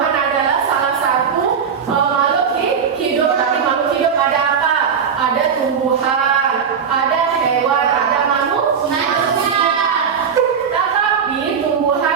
adalah salah satu makhluk hidup. Dari makhluk hidup ada apa? Ada tumbuhan, ada hewan, ada manusia. Tetapi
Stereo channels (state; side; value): quieter; left; 6.8 dB